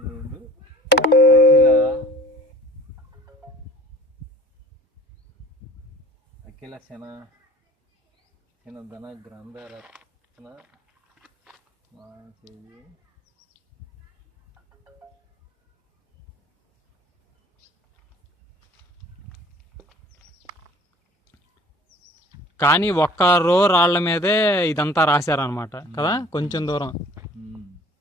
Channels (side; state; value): both; normal; correlation 0.48